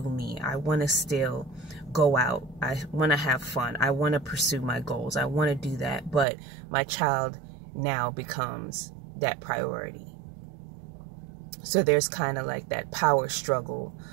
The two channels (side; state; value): left; drops out; at 6.2 s